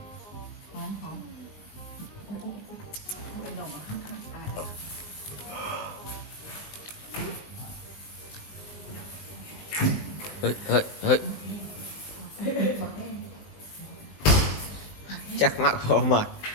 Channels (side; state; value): right; late; 19 ms